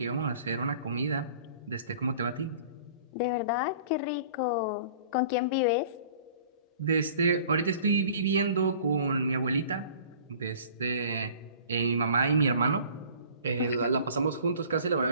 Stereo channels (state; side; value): inverted; both; correlation -0.47